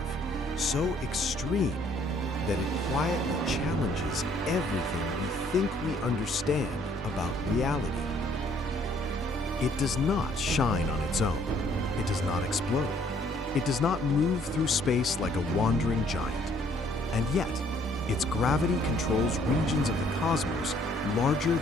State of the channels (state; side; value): normal; both; correlation 0.63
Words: so extreme, that it quietly challenges everything we think we understand about reality. It does not shine on its own. It does not explode. It does not move through space like a wandering giant. And yet, its gravity controls regions of the cosmos larger